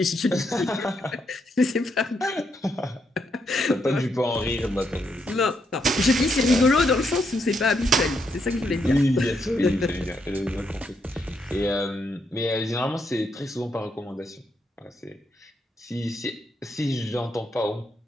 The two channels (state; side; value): normal; both; correlation 0.78